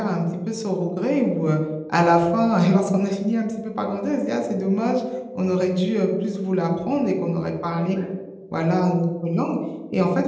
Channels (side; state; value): both; identical; correlation 1.00